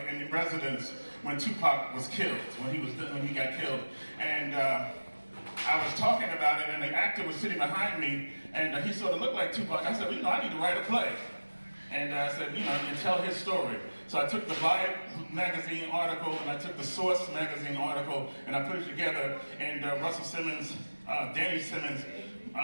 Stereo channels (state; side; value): inverted; both; correlation -1.00